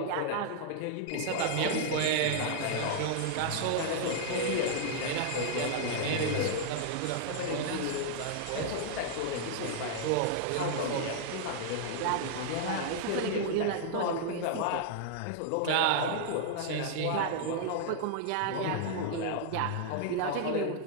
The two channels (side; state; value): both; different; correlation -0.01